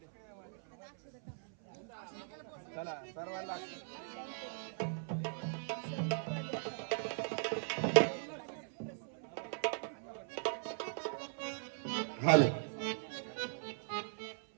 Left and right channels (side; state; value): left; silent; 51 dB below the other